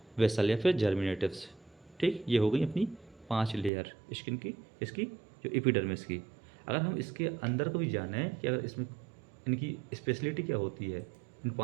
basal या फिर जर्मिनेटिव्स। ठीक, ये हो गई अपनी 5 लेयर स्किन की, इसकी जो एपिडर्मिस की। अगर हम इसके अंदर को भी जाने कि अगर इसमें इनकी स्पेशलिटी क्या होती है, इन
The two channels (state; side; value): drops out; left; at 3.7 s